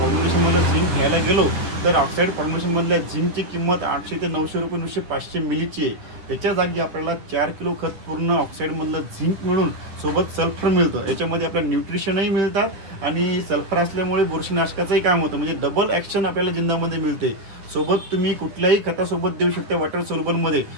झिंक घ्यायला गेलो तर ऑक्साईड फॉर्म्युलेशनमधल्या झिंकची किंमत 800 ते 900 रुपये नुसते 500 मिलीची आहे. त्याच्या जागी आपल्याला 4 किलो खत पूर्ण ऑक्साईडमधलं झिंक मिळून सोबत सल्फर मिळतं. याच्यामध्ये आपल्याला न्यूट्रिशनही मिळतात आणि सल्फर असल्यामुळे बुरशीनाशकाचंही काम होतं. म्हणजे डबल ॲक्शन आपल्याला जिंदामध्ये मिळते. सोबत तुम्ही कुठल्याही खतासोबत देऊ शकता. वॉटर सोल्युबलमध्ये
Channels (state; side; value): late; left; 10 ms